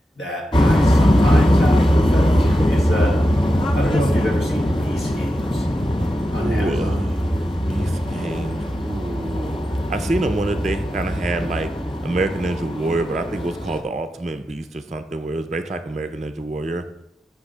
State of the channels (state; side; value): normal; both; correlation 0.89